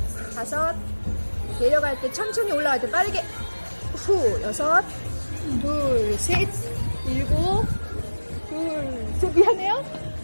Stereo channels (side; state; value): both; inverted; correlation -1.00